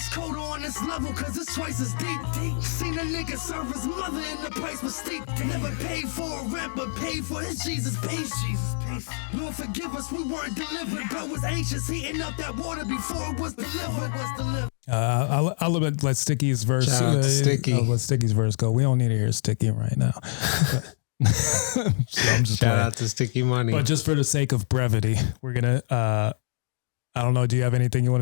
colder on this level cause it's twice as deep. Seen a nigga serve his mother and the price was steep. Never paid for a rent but paid for his Jesus peace. Lord forgive us, we weren't delivered but was anxious heating up that water before it was delivered. I'll let Sticky's verse. Shout out to Sticky. I'll let Sticky's verse go. We don't need to hear Sticky right now. So I'm just Shout playing. out to Sticky Money. But just for the sake of brevity, we're gonna. I don't know. Do you have anything you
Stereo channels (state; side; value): silent; right; digital silence